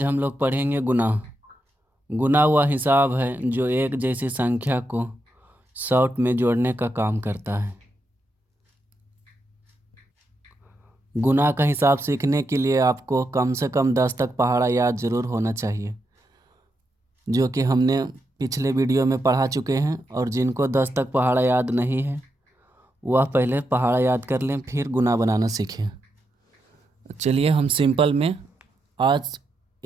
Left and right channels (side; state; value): both; normal; correlation 0.84